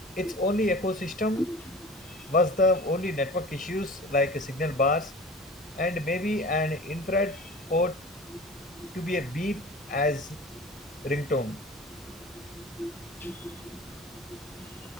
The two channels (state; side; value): normal; both; correlation 0.38